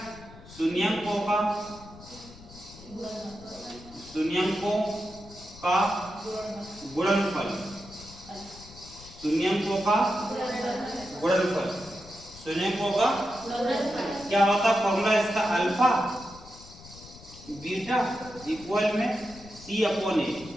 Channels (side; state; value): left; noise; rumble, 19 dB below the sound